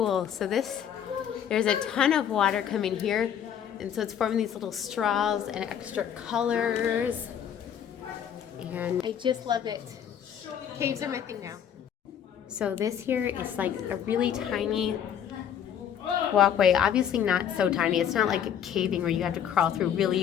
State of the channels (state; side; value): quieter; right; 9.0 dB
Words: So there's a ton of water coming here, and so it's forming these little straws and extra colors, and I just love it. Caves are my thing now. So this here is like a really tiny walkway, obviously not so tiny. It's not like caving where you have to crawl through